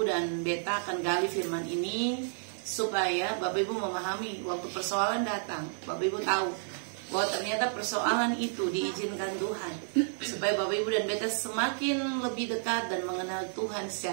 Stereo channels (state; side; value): silent; left; digital silence